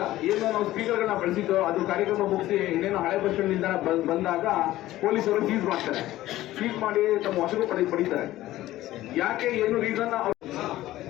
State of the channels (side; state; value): right; quieter; 15.4 dB